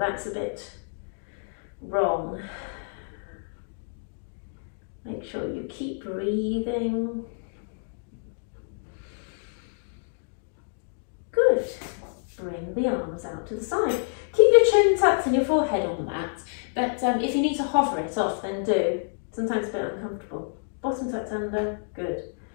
a bit wrong. Make sure you keep breathing. Good. Bring the arms out to the side. Keep your chin tucked and your forehead on the mat. But if you need to hover it off, then do. Sometimes a bit uncomfortable. Bottom tucked under. Good.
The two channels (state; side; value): silent; right; digital silence